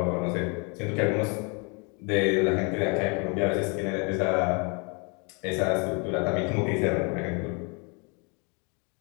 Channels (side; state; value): right; quieter; 33.5 dB